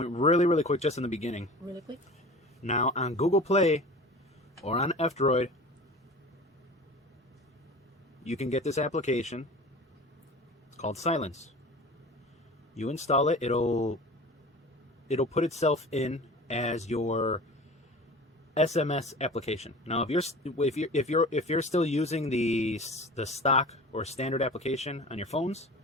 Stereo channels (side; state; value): both; normal; correlation 0.38